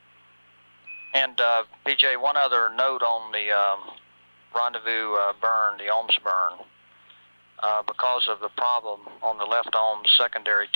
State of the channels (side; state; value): both; inverted; correlation -1.00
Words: And PJ, one other note on the Rendezvous burn, the ohms burn. Because of the problem on the left ohms secondary